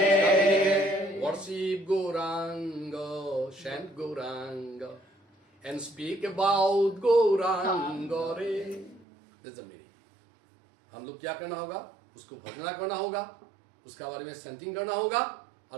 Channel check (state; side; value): drops out; left; at 9.1 s